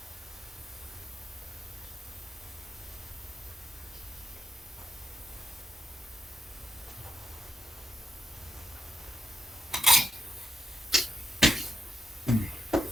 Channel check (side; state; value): both; normal; correlation 0.85